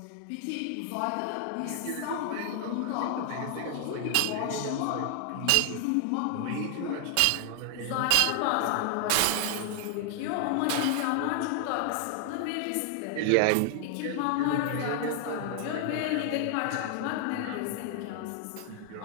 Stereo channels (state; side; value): different; both; correlation 0.00